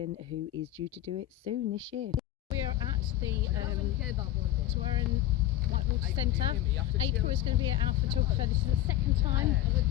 who is due to do it soon this year. We are at the Tywerryn Whitewater Centre. April is going to be our photographer. This is the second time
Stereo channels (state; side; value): quieter; right; 13.6 dB